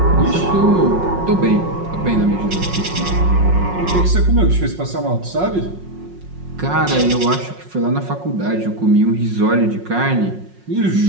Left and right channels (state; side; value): late; left; 5.5 ms